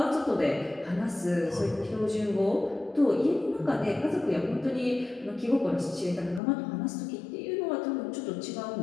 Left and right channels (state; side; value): drops out; right; at 6.4 s